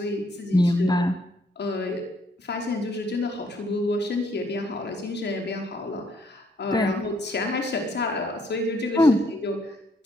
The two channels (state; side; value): normal; both; correlation 0.68